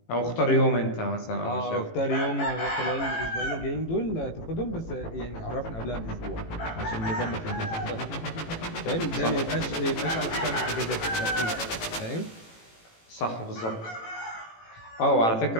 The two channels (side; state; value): right; late; 18 ms